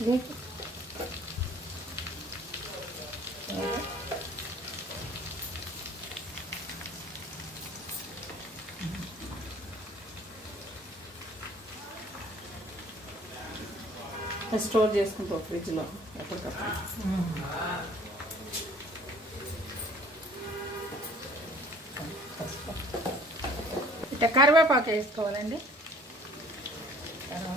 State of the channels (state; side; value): normal; both; correlation 0.54